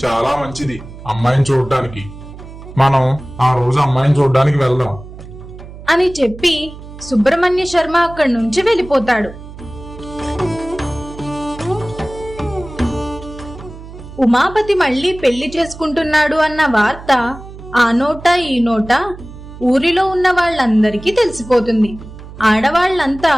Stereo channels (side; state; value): right; noise; hum, 15 dB below the sound